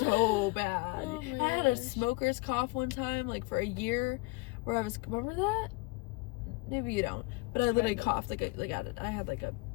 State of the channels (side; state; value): right; quieter; 25.1 dB